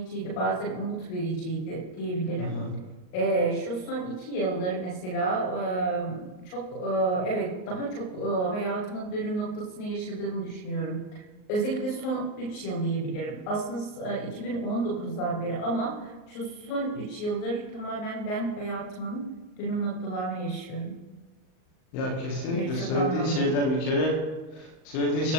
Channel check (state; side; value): late; right; 38 ms